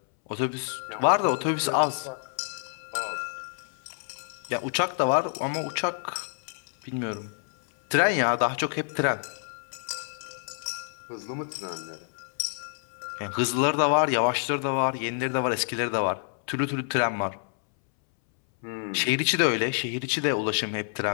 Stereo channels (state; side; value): silent; right; 60 dB below the other